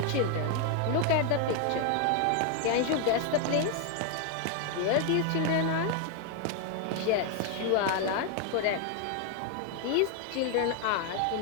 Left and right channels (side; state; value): both; different; correlation 0.00